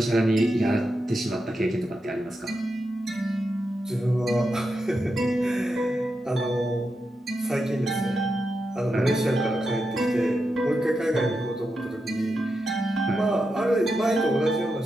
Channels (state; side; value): normal; both; correlation 0.87